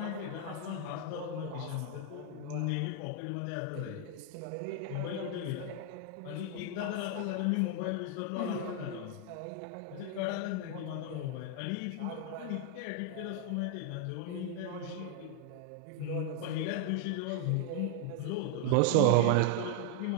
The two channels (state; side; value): different; both; correlation 0.00